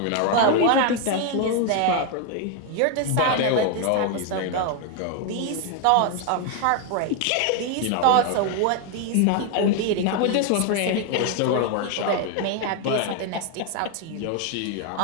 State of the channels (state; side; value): different; both; correlation 0.01